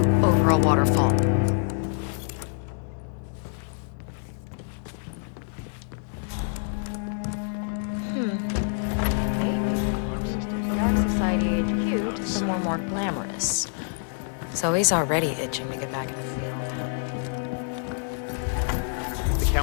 over a waterfall. The Ark Society HQ to somewhere more glamorous. Zoe's already itching to get back in the field. The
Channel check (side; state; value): right; silent; digital silence